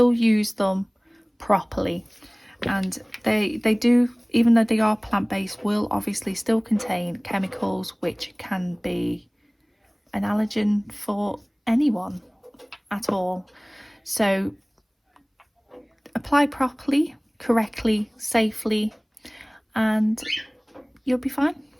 use them properly. And they do, even though they are plant-based, will obviously still contain chemicals which can be an allergen for anyone at all. So apply properly, correctly, safely, and you'll be fine.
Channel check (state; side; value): identical; both; correlation 1.00